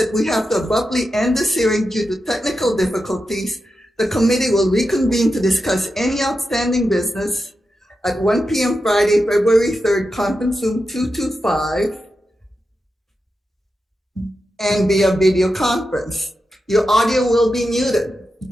we have to abruptly end this hearing due to technical difficulties, the committee will reconvene to discuss any outstanding business at 1 p.m. Friday, February 3rd, conference room 225, and via video conference. Your audio will be muted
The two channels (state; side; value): normal; both; correlation 0.89